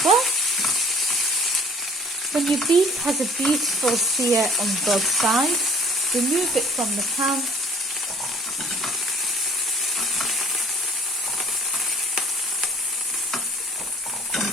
well. When your beef has a beautiful sear on both sides, remove it from the pan.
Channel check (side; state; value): both; normal; correlation 0.53